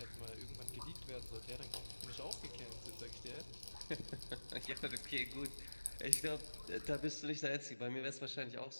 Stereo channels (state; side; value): inverted; both; correlation -1.00